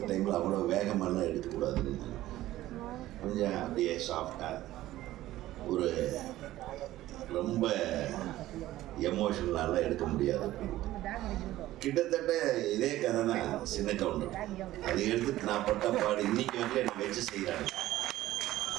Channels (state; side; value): quieter; left; 15.3 dB